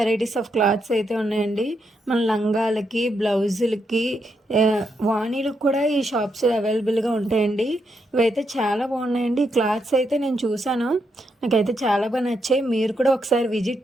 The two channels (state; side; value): normal; both; correlation 0.81